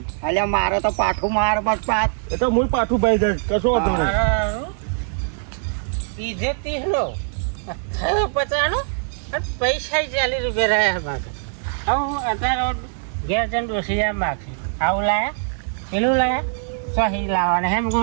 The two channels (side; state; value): left; silent; 64 dB below the other